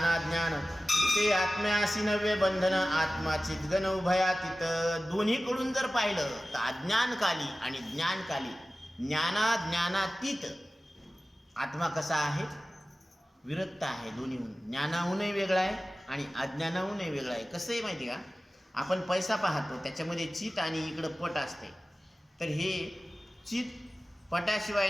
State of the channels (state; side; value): normal; both; correlation 0.96